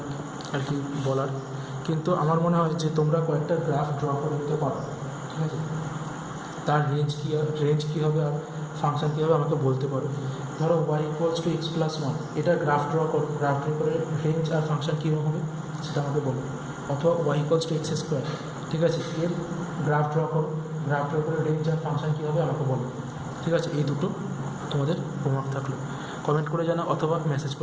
আর কি বলার। কিন্তু আমার মনে হয় যে তোমরা কয়েকটা গ্রাফ ড্র করে নিতে পারো, ঠিক আছে? তার রেঞ্জ কী হবে আর ফাংশন কী হবে আমাকে বলতে পারো। ধরো Y equals to X plus one, এটা গ্রাফ ড্র করো, গ্রাফ ড্র করে রেঞ্জ আর ফাংশন কীরকম হবে সেটা আমাকে বলো। অথবা Y equals to X square, ঠিক আছে, এর গ্রাফ ড্র করো, গ্রাফ ড্র করে রেঞ্জ আর ফাংশন কী হবে আমাকে বলো। ঠিক আছে, এই দুটো তোমাদের হোমওয়ার্ক থাকলো। কমেন্ট করে জানাও অথবা মেসেজ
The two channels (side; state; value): both; identical; correlation 1.00